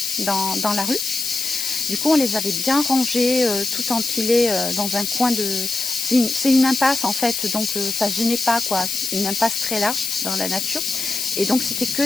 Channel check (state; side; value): noise; left; hiss, 3 dB below the sound